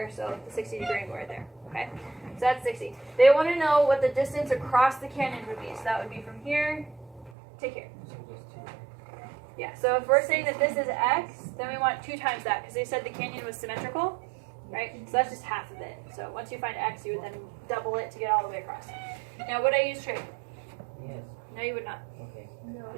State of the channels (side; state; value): left; drops out; at 7.3 s